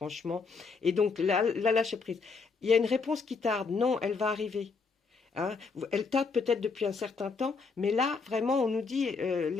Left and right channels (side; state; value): right; quieter; 4.7 dB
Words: Et donc, là, lâcher prise. Il y a une réponse qui tarde. Non, elle va arriver. Hein. Elle tarde peut-être depuis un certain temps, mais là, vraiment, on nous dit